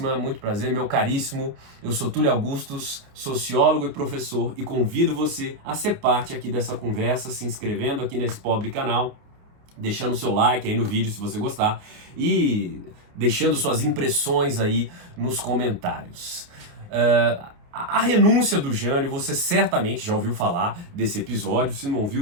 muito prazer, meu caríssimo. Eu sou Túlio Augustus, sociólogo e professor, e convido você a ser parte aqui dessa conversa, se inscrevendo aqui nesse pobre canal, deixando seu like aí no vídeo se você gostar e deixando suas impressões aí nos comentários. A renúncia do Jânio, você certamente já ouviu falar desse episódio, se não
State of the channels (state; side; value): late; left; 29 ms